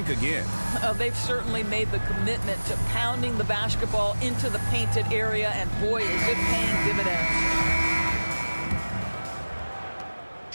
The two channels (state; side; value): inverted; both; correlation -1.00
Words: again. They've certainly made the commitment to pounding the basketball into the painted area, and boy, is it paying dividends.